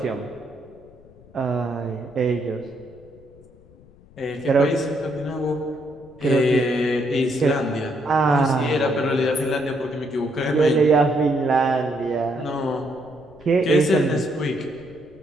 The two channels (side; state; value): left; noise; rumble, 25 dB below the sound